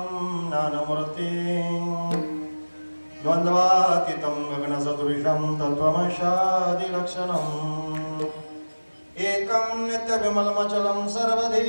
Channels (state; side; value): inverted; both; correlation -1.00